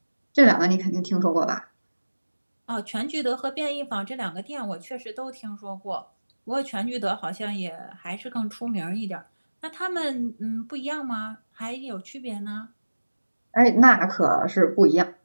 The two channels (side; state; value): both; inverted; correlation -1.00